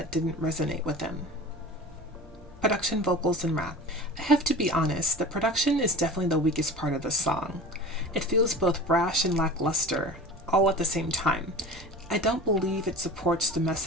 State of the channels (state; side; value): normal; both; correlation 0.36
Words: didn't resonate with them. Production, vocals, and rap. I have to be honest, the production is definitely the weakest part of the song. It feels both brash and lackluster, all at the same time. I don't believe it supports the